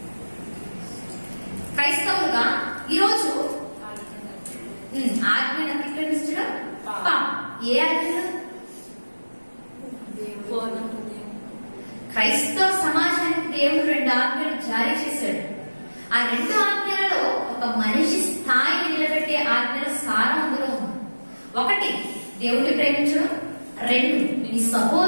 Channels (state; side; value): inverted; both; correlation -1.00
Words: క్రైస్తవులుగా ఈరోజు ఆజ్ఞను అతిక్రమించడం పాపం. ఏ ఆజ్ఞలు? క్రైస్తవ సమాజానికి దేవుడు 2 ఆజ్ఞలు జారీ చేశాడు. ఆ 2 ఆజ్ఞలలో ఒక మనిషి స్థాయిని నిలబెట్టే ఆజ్ఞల సారం అందులో ఉంది. 1 దేవుడిని ప్రేమించడం, 2 నీ